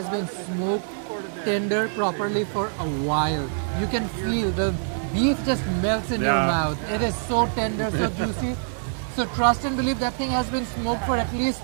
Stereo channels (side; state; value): left; silent; 62 dB below the other